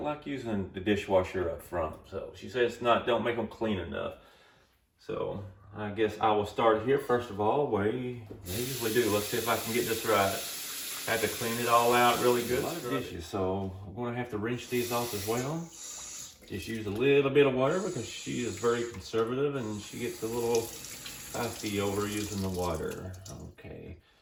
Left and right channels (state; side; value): identical; both; correlation 1.00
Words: like using the dishwasher up front. So she says don't make them clean enough. So I guess I will start here first of all, way they usually do. Let's see if I can get this right. I have to clean it all out really good. A lot of dishes, so I'm going to have to rinse these off as well. Just use a little bit of water because she is very conservative and she gets a little fussy over using the water. Okay,